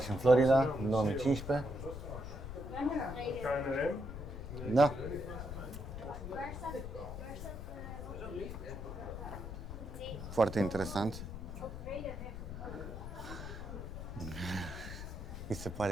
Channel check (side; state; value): left; noise; rumble, 8 dB below the sound